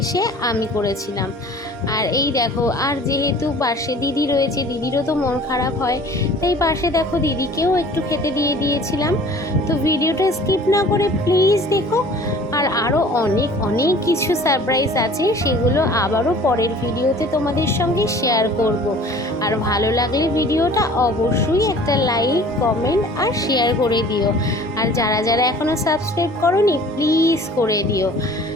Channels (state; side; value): normal; both; correlation 0.48